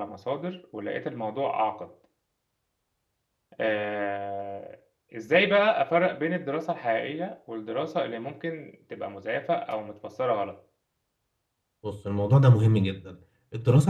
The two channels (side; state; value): both; identical; correlation 1.00